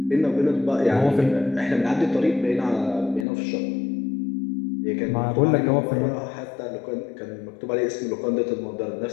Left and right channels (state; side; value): drops out; right; at 3.2 s